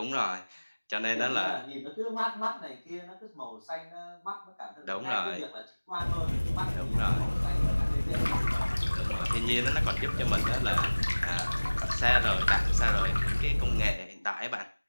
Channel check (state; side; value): inverted; both; correlation -1.00